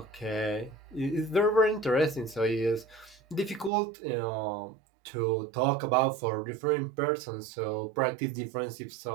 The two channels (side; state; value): left; drops out; at 3.7 s